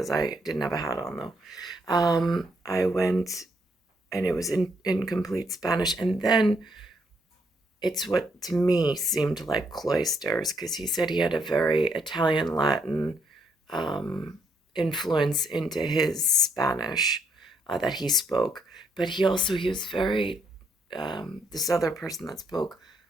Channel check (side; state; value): both; normal; correlation 0.74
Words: I didn't have a hat on though. I went, and it was in complete Spanish. And then it's what to me seemed like cloisters, because he said he had a very Italian Latin influence into his Spanish that he spoke. But he was very, this other person that spoke